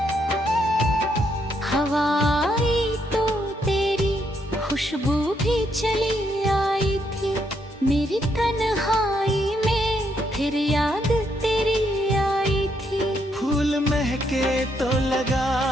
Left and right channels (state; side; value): normal; both; correlation 0.75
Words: हवा आई तो तेरी खुशबू भी चली आई थी, मेरी तन्हाई में फिर याद तेरी आई थी। फूल महके तो